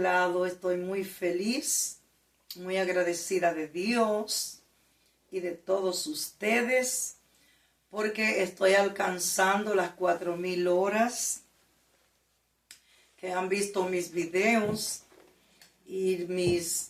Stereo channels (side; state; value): both; identical; correlation 1.00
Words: estoy muy feliz, muy agradecida de Dios y de todos ustedes, porque estoy alcanzando las 4,000 horas que han visto mis videos y mis